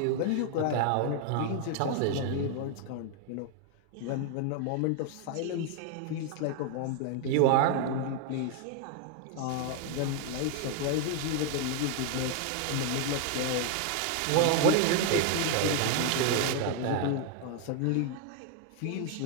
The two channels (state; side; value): different; both; correlation 0.00